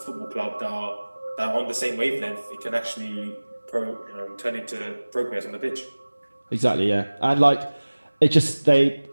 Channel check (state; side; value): inverted; both; correlation -1.00